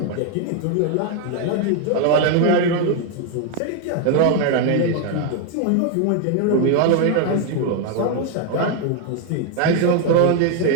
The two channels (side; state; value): both; different; correlation 0.01